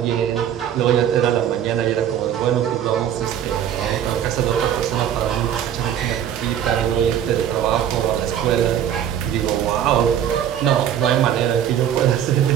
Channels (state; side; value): quieter; left; 9.9 dB